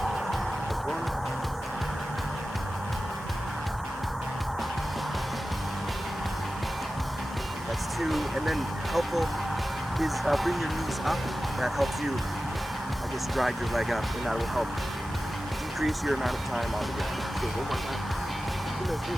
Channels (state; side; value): normal; both; correlation 0.94